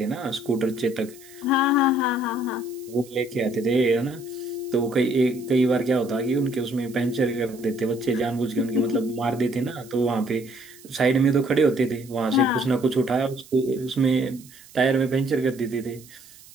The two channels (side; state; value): right; noise; hiss, 22 dB below the sound